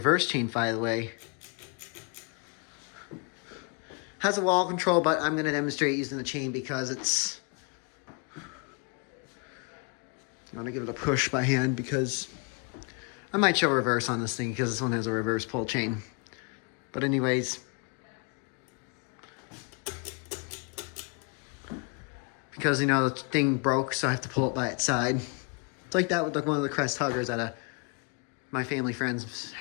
chain, by the way. Has a wall control, but I'm going to demonstrate using the chain because it's... I'm going to give it a push by hand because I might show reverse on this thing because this one has a reverse pull chain. But anyways, because, you know, the thing broke, so I have to pull it by its side. It's like that with like one of the crest huggers at my family friend's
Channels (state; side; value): quieter; right; 34.7 dB